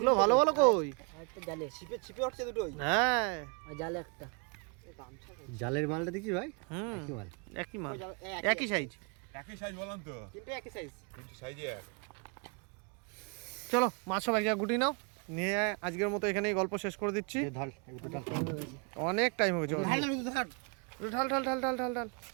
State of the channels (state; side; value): quieter; left; 35.0 dB